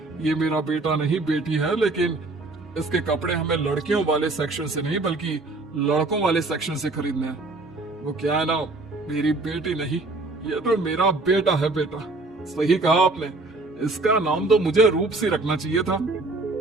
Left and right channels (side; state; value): left; quieter; 3.2 dB